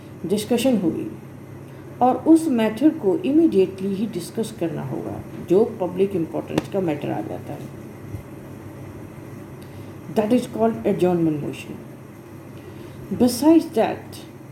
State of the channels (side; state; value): both; identical; correlation 1.00